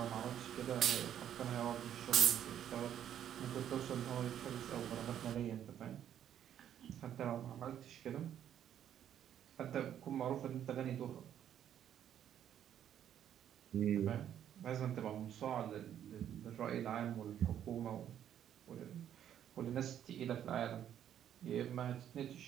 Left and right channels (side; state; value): left; quieter; 10.2 dB